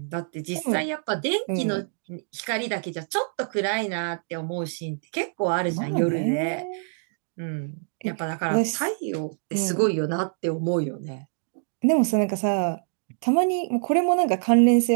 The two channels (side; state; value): left; silent; digital silence